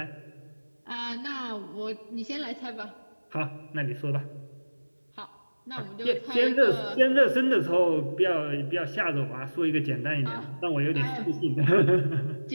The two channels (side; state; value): both; inverted; correlation -1.00